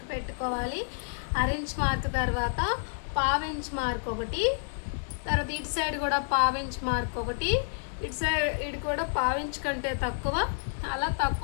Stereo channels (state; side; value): silent; right; 58 dB below the other